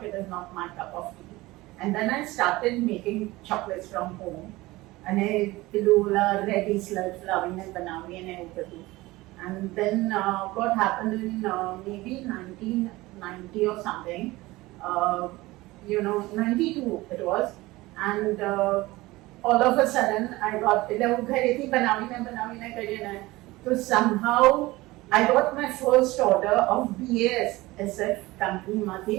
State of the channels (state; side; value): quieter; left; 19.8 dB